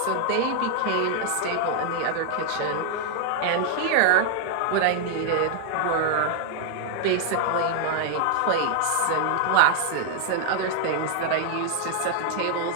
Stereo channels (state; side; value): different; both; correlation 0.00